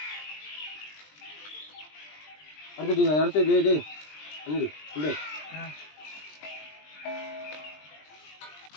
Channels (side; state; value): right; late; 20 ms